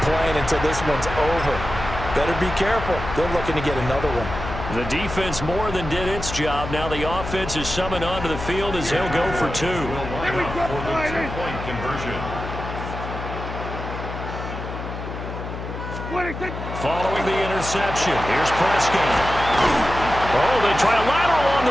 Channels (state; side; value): noise; left; hum, 8 dB below the sound